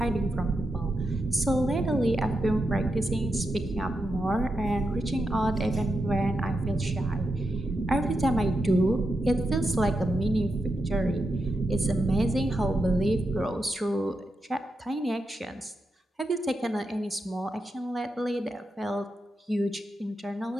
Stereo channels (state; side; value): normal; both; correlation 0.86